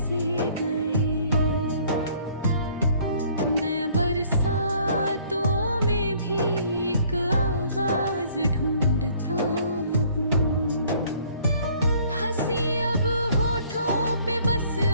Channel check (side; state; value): both; inverted; correlation -0.59